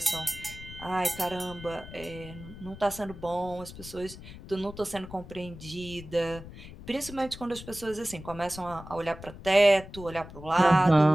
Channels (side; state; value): left; noise; rumble, 15 dB below the sound